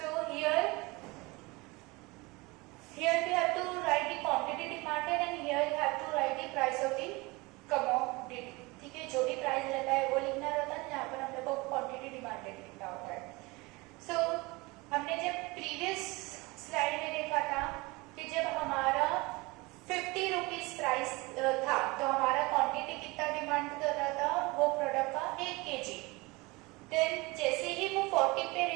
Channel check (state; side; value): quieter; left; 24.2 dB